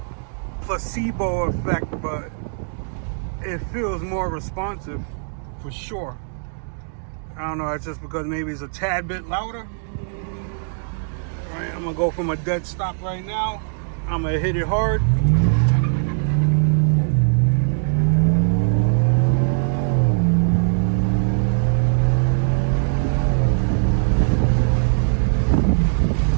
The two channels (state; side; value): silent; left; digital silence